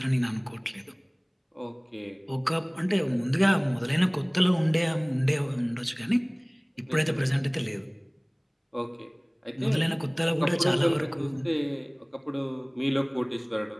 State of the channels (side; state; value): both; identical; correlation 1.00